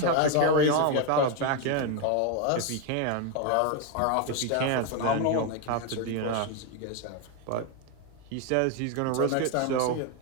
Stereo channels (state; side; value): different; both; correlation 0.02